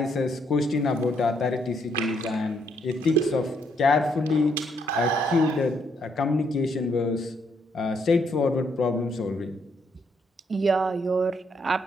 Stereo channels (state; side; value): normal; both; correlation 0.73